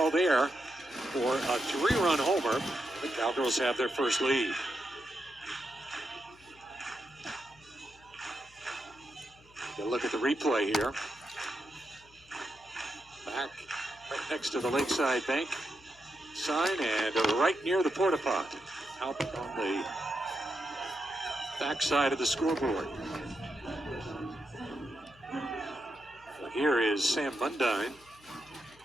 there for a 3-run homer. The Cowgirls have their first lead. Get a look at the replay here. Back right next to the Lakeside Bank sign and right near the porta pot, out on the back side of the scoreboard. So here is Sam Mundine.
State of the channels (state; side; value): noise; left; hum, 27 dB below the sound